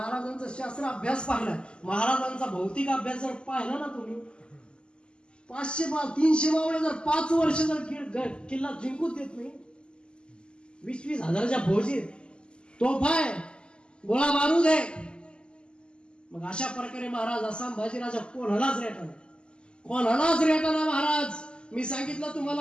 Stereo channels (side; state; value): right; late; 0.050 ms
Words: शास्त्र अभ्यास पाहिला, महाराजांचा भौतिक अभ्यास जर पाहिला ना तुम्ही, 300 मावळे जर 5 वर्ष जर किल्ला जिंकूच देत नाही, 20 हजाराच्या फौजी, तोफा आहे, गोळा बारूद आहे, मग अशा प्रकारे महाराज असा संभाजीराजा कोणालाच रेटाना महाराज. मी सांगितलं